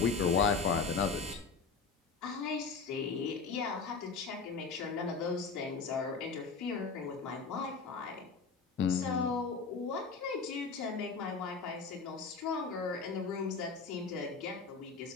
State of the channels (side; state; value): right; quieter; 4.9 dB